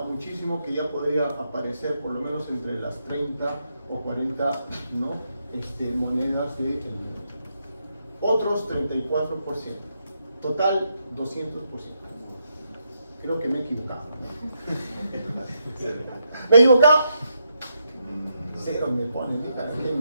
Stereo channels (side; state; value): both; inverted; correlation -0.80